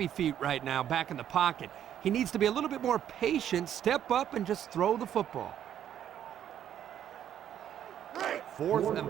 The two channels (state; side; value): quieter; left; 10.2 dB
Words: feet right now back in the pocket. He needs to be a little bit more patient, step up, and just throw the football. 4th